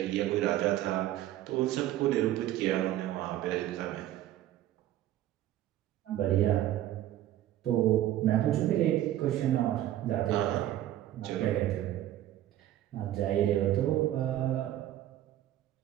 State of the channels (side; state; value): left; quieter; 13.3 dB